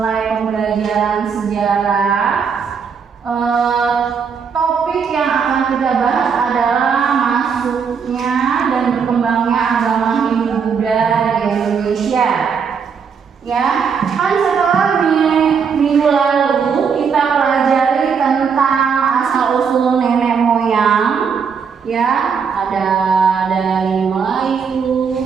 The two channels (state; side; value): quieter; left; 6.3 dB